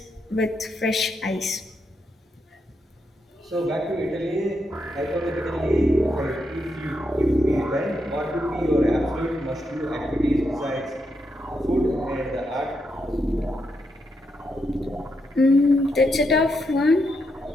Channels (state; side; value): normal; both; correlation 0.82